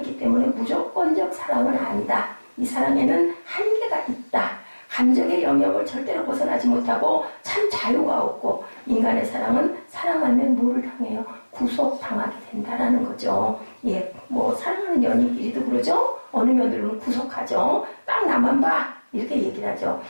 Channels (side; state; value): both; inverted; correlation -1.00